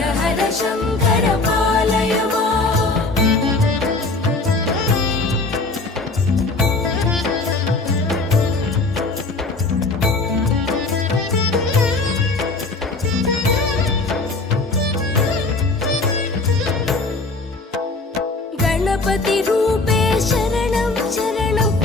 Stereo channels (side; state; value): right; quieter; 3.5 dB